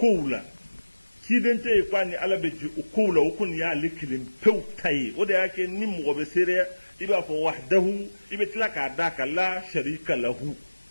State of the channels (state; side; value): inverted; both; correlation -1.00